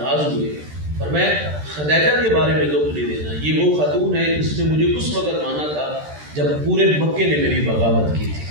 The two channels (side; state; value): left; late; 13 ms